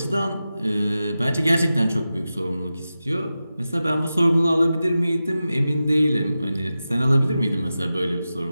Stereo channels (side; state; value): both; inverted; correlation -0.93